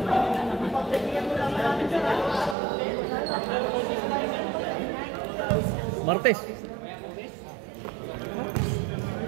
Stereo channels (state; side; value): drops out; left; at 2.6 s